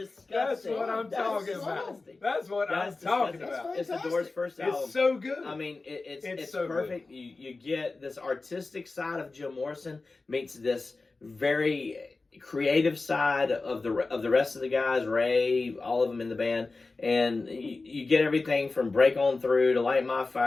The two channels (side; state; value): right; quieter; 3.6 dB